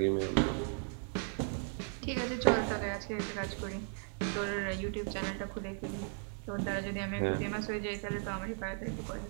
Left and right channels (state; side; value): silent; left; 54 dB below the other